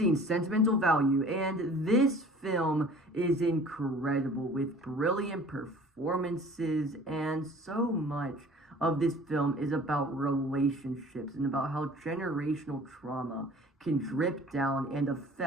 Sentimental Value, and this film is incredible with brilliant performances, and so much of this film is about relationships and about how generational trauma can drip down and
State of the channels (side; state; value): both; normal; correlation 0.47